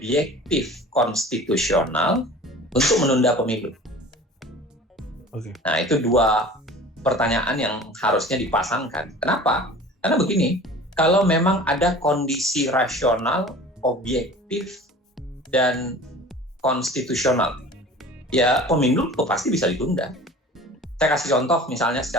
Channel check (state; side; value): normal; both; correlation 0.42